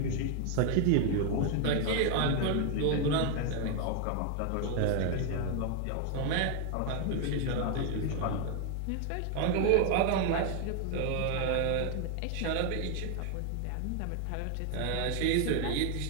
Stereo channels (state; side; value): different; both; correlation 0.00